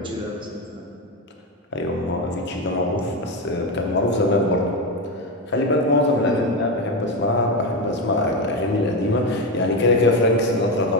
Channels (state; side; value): normal; both; correlation 0.13